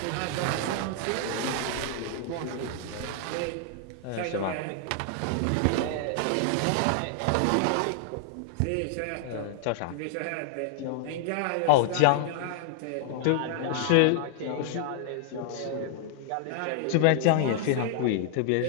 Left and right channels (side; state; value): both; different; correlation 0.00